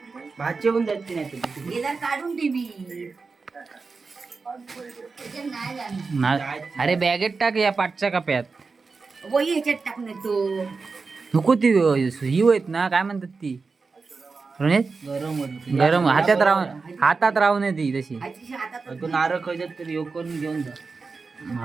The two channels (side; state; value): left; quieter; 4.4 dB